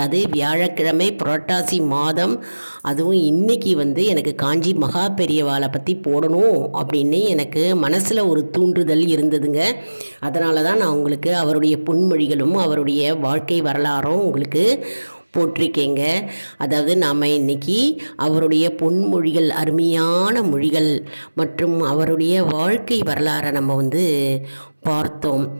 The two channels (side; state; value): both; inverted; correlation -1.00